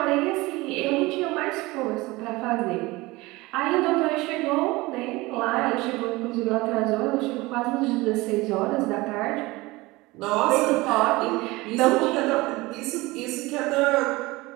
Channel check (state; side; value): quieter; left; 21.4 dB